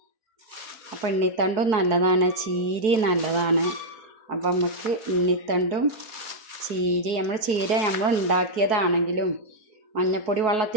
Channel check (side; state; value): left; late; 4.6 ms